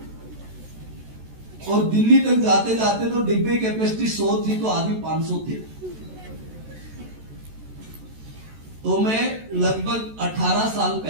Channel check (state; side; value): late; left; 14 ms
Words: और दिल्ली तक जाते जाते तो डिब्बे कैपेसिटी 100 थी, तो आदमी 500 थे। तो मैं लगभग 18 साल